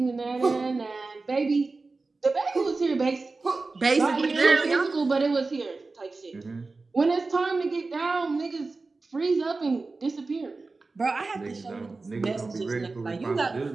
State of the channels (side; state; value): left; quieter; 3.7 dB